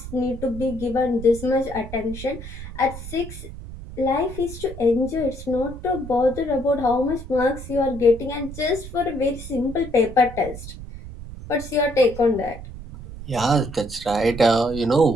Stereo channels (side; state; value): right; noise; rumble, 12 dB below the sound